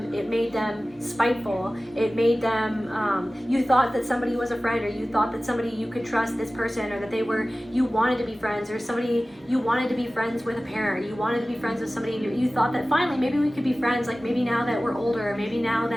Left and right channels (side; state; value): both; normal; correlation 0.97